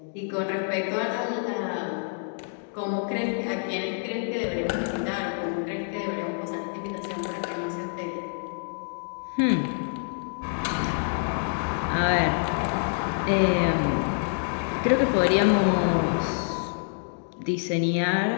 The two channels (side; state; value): right; silent; 60 dB below the other